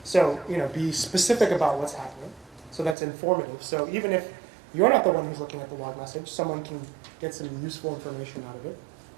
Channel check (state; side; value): drops out; left; at 3.0 s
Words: be specific about what's happening. So that's informative. So even if you're not the one who's looking at the log message, someone can get some useful information out of it.